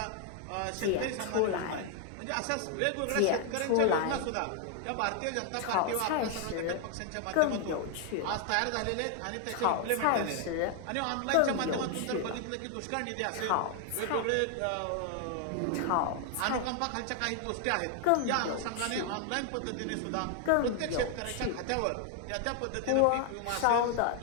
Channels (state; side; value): different; both; correlation 0.00